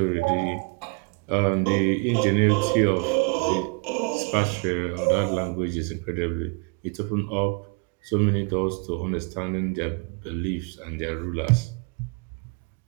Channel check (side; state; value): left; quieter; 33.6 dB